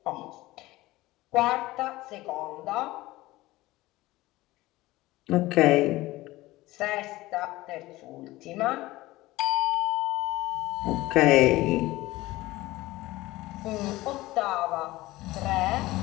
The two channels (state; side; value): quieter; right; 18.5 dB